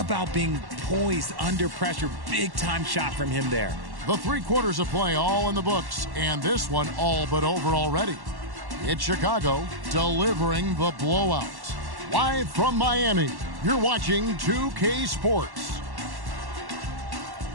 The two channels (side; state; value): left; late; 1.1 ms